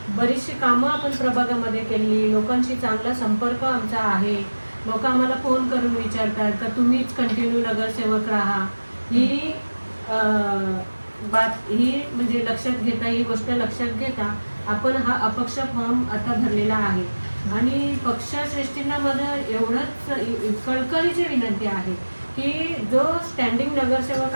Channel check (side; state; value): both; inverted; correlation -1.00